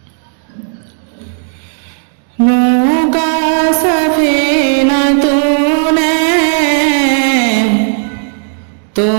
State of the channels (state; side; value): silent; left; digital silence